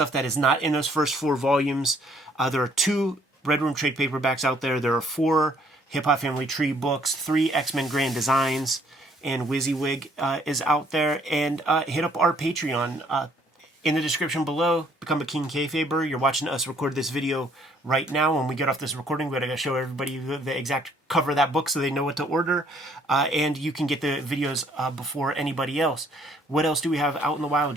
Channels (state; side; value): normal; both; correlation 0.64